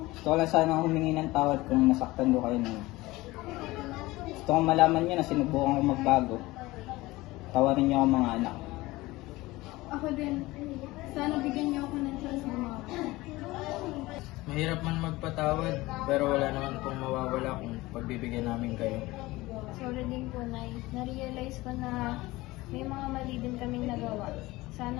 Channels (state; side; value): quieter; right; 19.8 dB